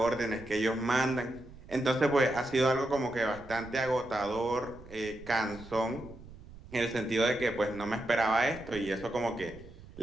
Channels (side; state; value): right; noise; rumble, 18 dB below the sound